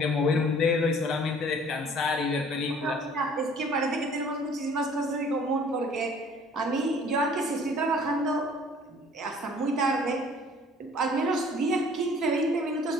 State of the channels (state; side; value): normal; both; correlation 0.53